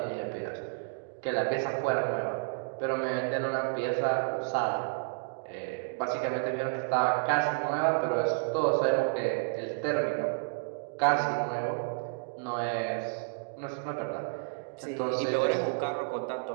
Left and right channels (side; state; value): left; silent; digital silence